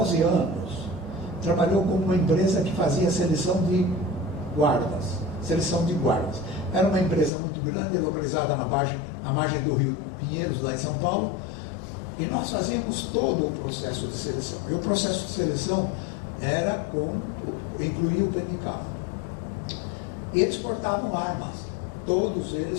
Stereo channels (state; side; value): drops out; right; at 7.3 s